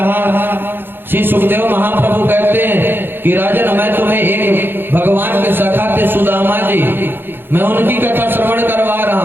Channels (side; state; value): left; late; 0.10 ms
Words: श्री सुखदेव महाप्रभु कहते हैं कि राजन, मैं तुम्हें एक भगवान के सखा थे सुदामा जी, मैं उनकी कथा श्रवण करवा रहा